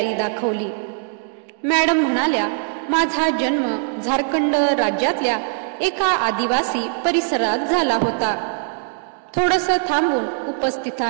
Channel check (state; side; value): silent; left; digital silence